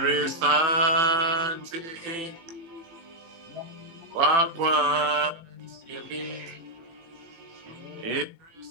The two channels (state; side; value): late; left; 18 ms